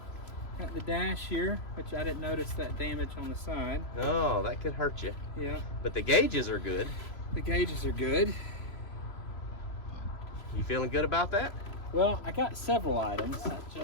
got the dash here, which I didn't notice that damage on the side. Oh, that could hurt you. Yeah. But the gauges are good. The gauges are good. You feeling good about that? Well, I got several items. It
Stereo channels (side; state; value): right; late; 3.0 ms